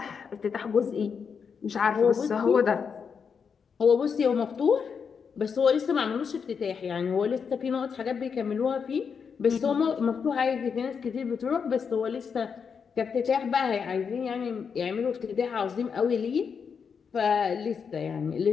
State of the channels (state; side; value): quieter; right; 6.3 dB